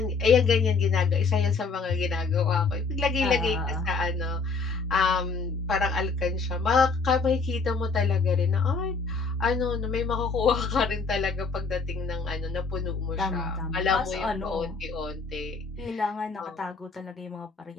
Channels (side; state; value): right; quieter; 4.4 dB